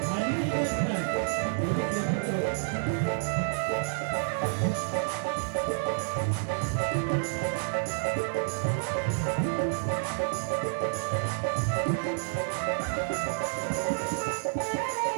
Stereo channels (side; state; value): left; silent; digital silence